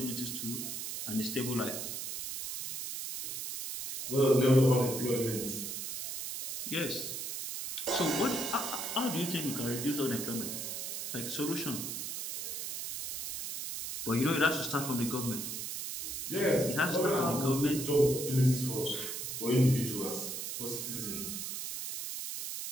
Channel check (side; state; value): right; noise; hiss, 5 dB below the sound